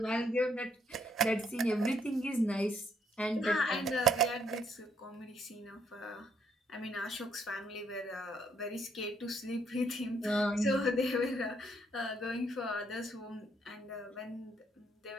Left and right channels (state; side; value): normal; both; correlation 0.69